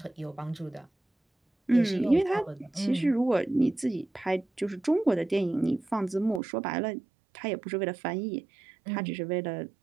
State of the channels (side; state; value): left; drops out; at 6.4 s